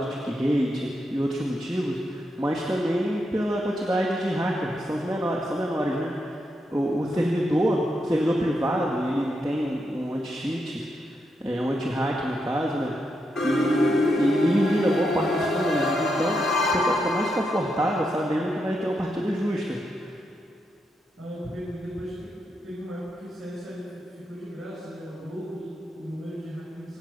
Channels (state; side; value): normal; both; correlation 0.83